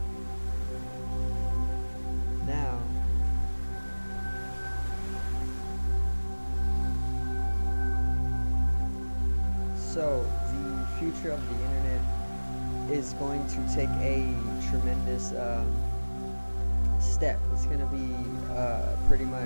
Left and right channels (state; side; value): inverted; both; correlation -1.00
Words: Now, so the future of the internet is going to take a tremendous step. It's going to be pretty